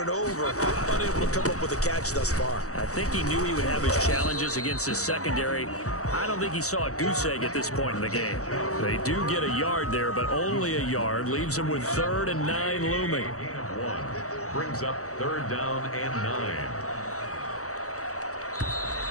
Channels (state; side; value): late; right; 0.65 ms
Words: over, unable to come up with a catch thus far. I think he knew he would have his challenges against his secondary. I don't think he saw a goose egg at this point in the game. They do get a yard there, but only a yard. Leaves him with 3rd and 9 looming. 1 brings up 3rd down and 9.